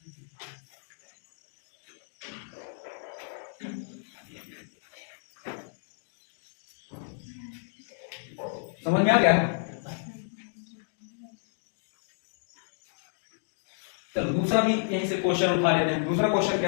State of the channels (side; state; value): right; silent; digital silence